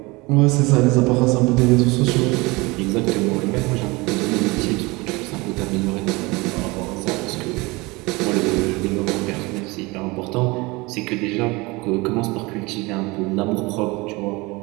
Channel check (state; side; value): quieter; left; 24.0 dB